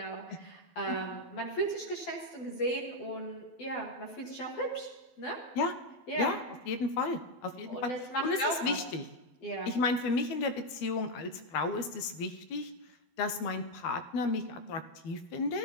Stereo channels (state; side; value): late; right; 12 ms